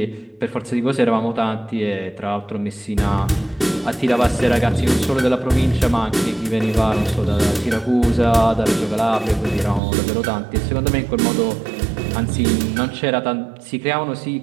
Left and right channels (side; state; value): left; drops out; at 9.8 s